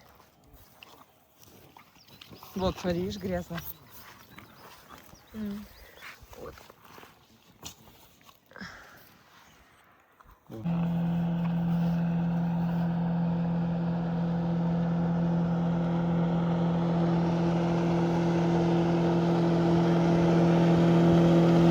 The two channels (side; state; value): both; identical; correlation 1.00